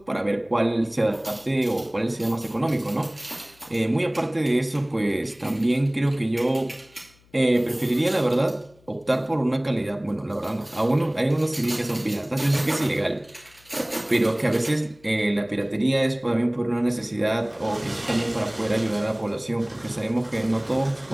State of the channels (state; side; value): noise; left; hum, 30 dB below the sound